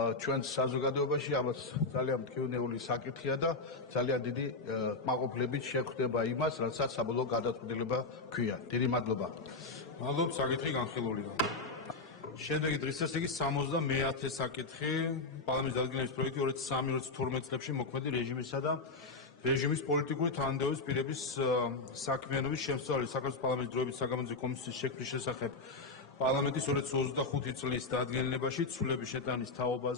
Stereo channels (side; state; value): right; quieter; 3.6 dB